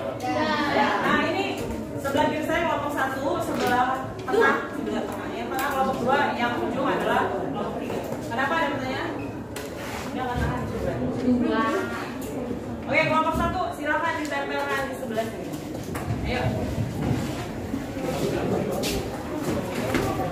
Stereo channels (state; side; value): identical; both; correlation 1.00